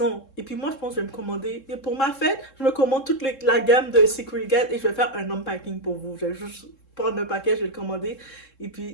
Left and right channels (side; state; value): right; late; 3.7 ms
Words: Et puis moi, je pense que je vais me commander. Et pour ma fête, je me commande toute la gamme de Secret Guide et je vais faire un unpacking pour vous. Je vais juste prendre un paquet, je vais le commander. Et